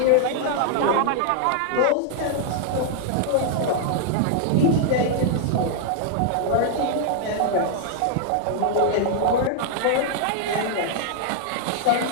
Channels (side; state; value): both; different; correlation -0.01